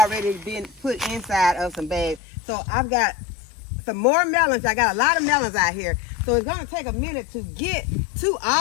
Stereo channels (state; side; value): drops out; right; at 2.2 s